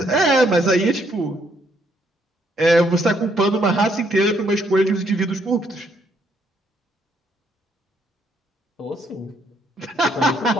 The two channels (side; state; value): both; normal; correlation 0.71